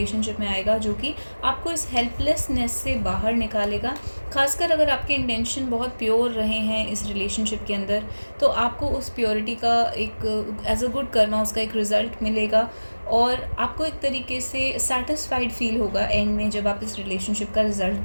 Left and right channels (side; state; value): both; inverted; correlation -1.00